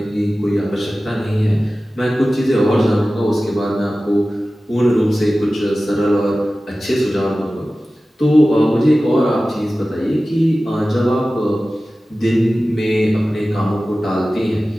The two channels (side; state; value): both; normal; correlation 0.96